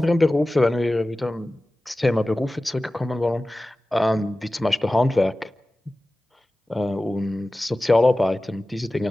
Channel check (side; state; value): both; normal; correlation 0.96